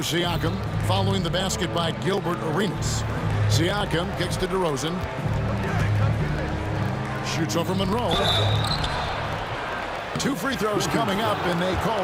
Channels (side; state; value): both; identical; correlation 1.00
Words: Siakam following the basket by Gilbert Arenas. Siakam kicks to DeRozan. Shoots over Monroe. 2 free throws coming up, and they call